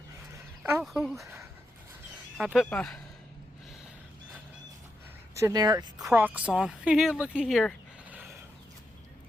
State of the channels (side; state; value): both; normal; correlation 0.85